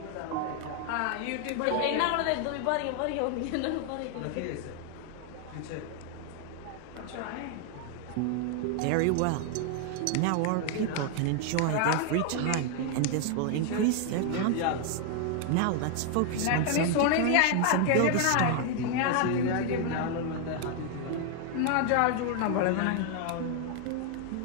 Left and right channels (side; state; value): both; different; correlation 0.00